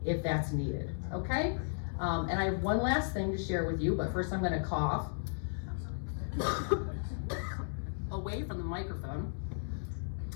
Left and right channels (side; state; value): right; silent; digital silence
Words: if that's needed, okay? And I have one last thing to share with you, but first I'm gonna cough away from the microphone.